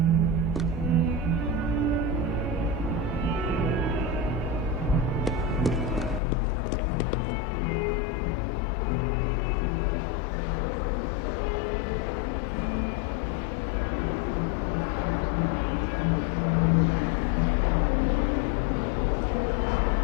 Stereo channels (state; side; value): drops out; right; at 6.2 s